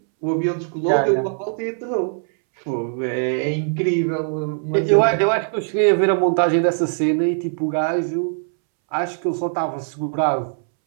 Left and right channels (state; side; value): silent; left; 65 dB below the other